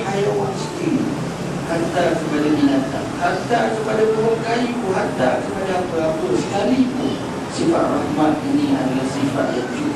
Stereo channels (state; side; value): identical; both; correlation 1.00